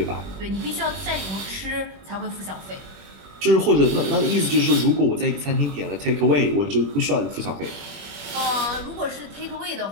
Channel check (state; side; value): late; left; 21 ms